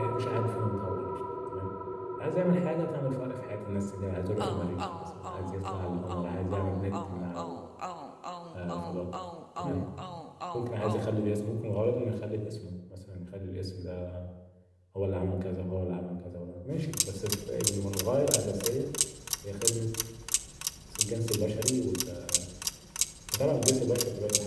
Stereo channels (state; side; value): identical; both; correlation 1.00